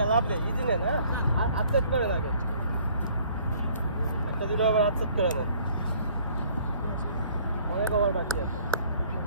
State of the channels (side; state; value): both; inverted; correlation -0.58